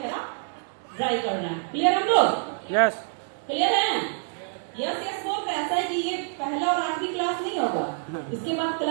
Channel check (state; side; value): silent; left; 61 dB below the other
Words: ड्राई करना है। क्लियर हम लोग? यस। क्लियर है? यस यस बोल रहे। ऐसा है कि ये पहला और आखिरी क्लास नहीं होगा, इसके बाद